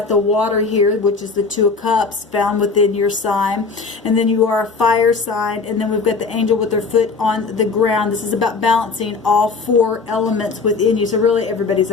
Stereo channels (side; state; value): right; quieter; 4.4 dB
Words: the water here, which is the Two of Cups found within your sign, and then you are a fire sign, and then we've got the angel with their foot on the ground. This is about balancing all four elements within you. So really everybody's